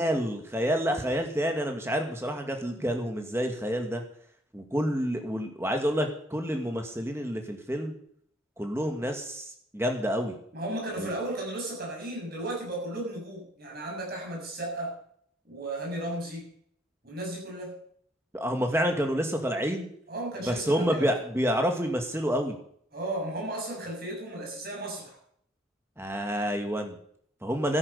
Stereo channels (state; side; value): normal; both; correlation 0.66